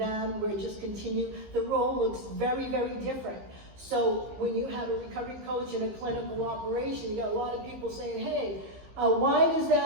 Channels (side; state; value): left; late; 15 ms